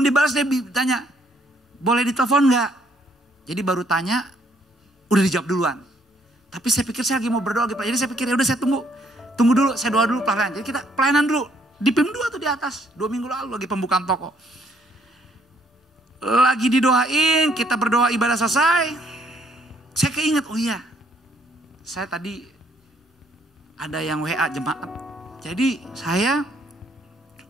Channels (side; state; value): both; normal; correlation 0.67